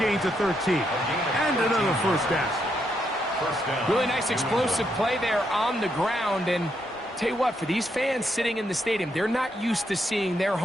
of 13. And another first down. Really nice explosive play there on the ground. And tell you what, for these fans sitting in the stadium, they're not used to seeing their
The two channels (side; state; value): both; normal; correlation 0.78